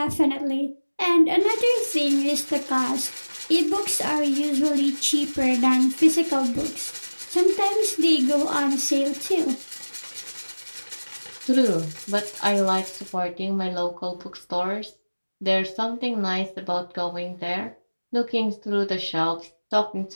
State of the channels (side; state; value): both; inverted; correlation -1.00